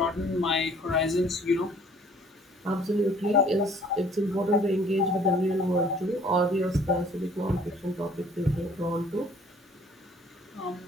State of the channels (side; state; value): both; normal; correlation 0.56